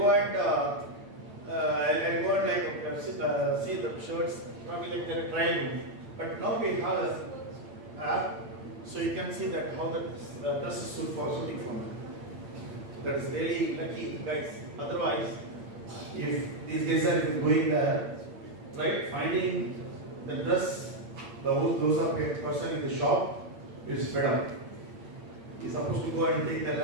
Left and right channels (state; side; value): late; left; 8.7 ms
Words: and I'll go and see the shirts, probably like the trial room. But now we have a app, so you can see that how the dress is suiting for me. That is really lucky, guys. Otherwise, if these guys are going there, right, finding the dress, those are a person in the shop is fed up. He's supposed to go and take the